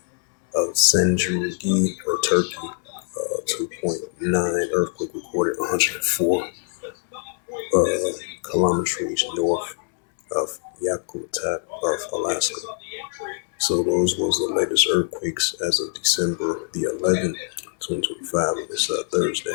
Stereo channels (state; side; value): silent; right; 61 dB below the other